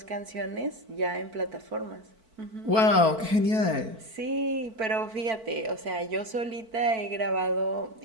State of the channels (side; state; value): left; late; 4.5 ms